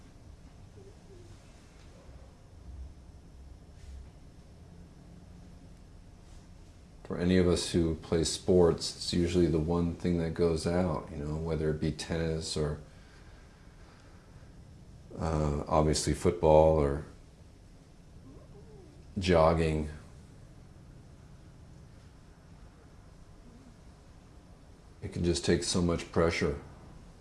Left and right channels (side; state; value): both; identical; correlation 1.00